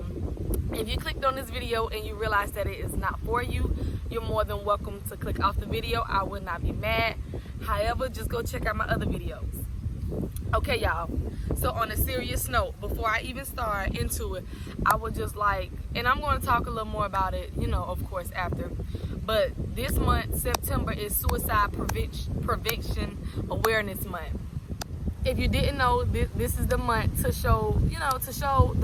if you clicked on this video and you realize that it is not for you, you're more than welcome to click off the video. I would not be mad. However, just go check out my other videos. Okay, y'all. So on a serious note, before I even start into it, I would just like, and I'm going to talk a little more about it, you know, of course, after. But this month, September, is Suicide Prevention Awareness Month. If you didn't know, this is the month to show, you know, to show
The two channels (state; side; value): identical; both; correlation 1.00